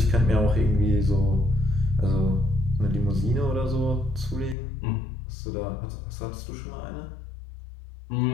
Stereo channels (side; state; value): right; drops out; at 4.5 s